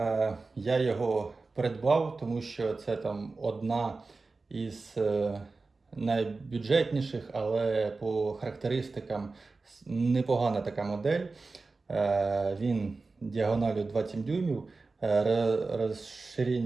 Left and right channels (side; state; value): left; quieter; 3.8 dB